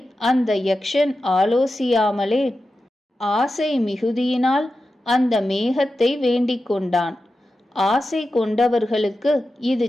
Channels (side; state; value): both; normal; correlation 0.92